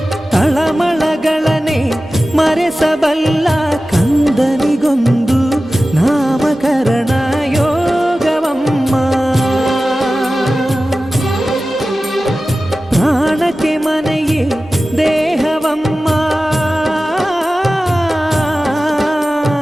ತಳಮಳಗಳನೆ ಮರೆಸಬಲ್ಲ, ಕಂದನಿಗೊಂದು ನಾಮಕರಣ ಯೋಗವಮ್ಮ. ಪ್ರಾಣಕ್ಕೆ ಮನೆಯೇ ದೇಹವಮ್ಮ,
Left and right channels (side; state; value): both; normal; correlation 0.95